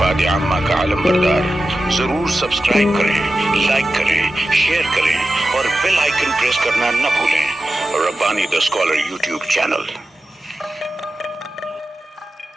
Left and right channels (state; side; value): normal; both; correlation 0.92